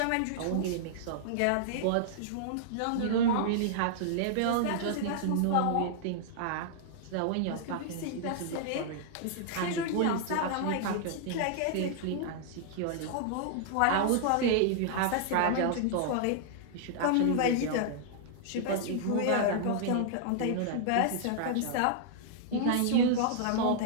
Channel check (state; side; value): different; both; correlation -0.01